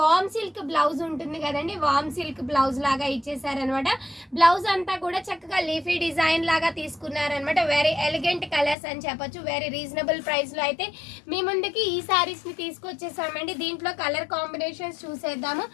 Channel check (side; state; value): right; drops out; at 8.8 s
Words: సిల్క్ బ్లౌజ్ ఉంటుంది కదండి, వామ్ సిల్క్ బ్లౌజ్ లాగా ఇచ్చేసారనమాట. బ్లౌజ్ అంతా కూడా చక్కగా లీఫీ డిజైన్ లాగా తీసుకున్నారనమాట. వెరీ ఎలిగెంట్ కలర్స్ అని చెప్పొచ్చు. వెరీ రీజనబుల్ ప్రైస్ లో అయితే మీ ముందుకి ఈ సారీస్ ని తీసుకొచ్చేసామండి. దీంట్లో కలర్ కాంబినేషన్స్ చూసేద్దాము.